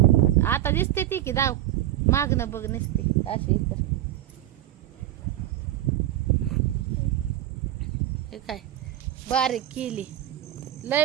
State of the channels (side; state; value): left; quieter; 13.3 dB